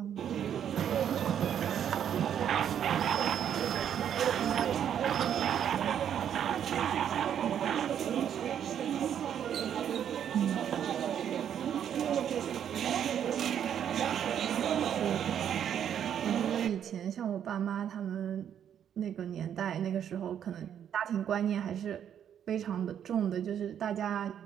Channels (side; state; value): left; quieter; 9.2 dB